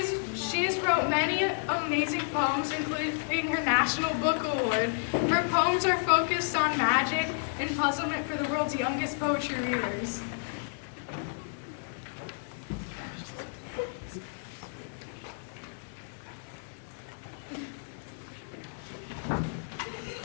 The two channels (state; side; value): silent; right; digital silence